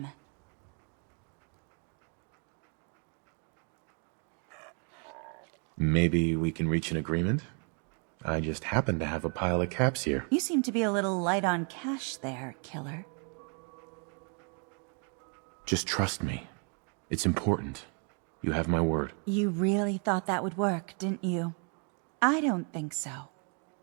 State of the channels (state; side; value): quieter; left; 39.2 dB